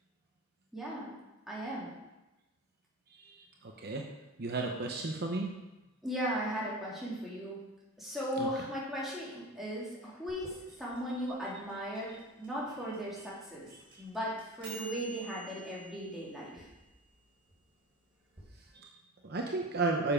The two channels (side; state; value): both; normal; correlation 0.32